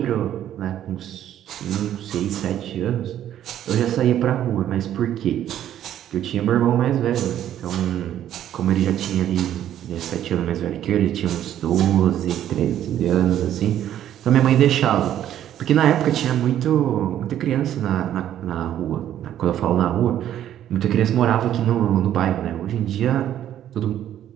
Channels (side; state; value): left; quieter; 11.2 dB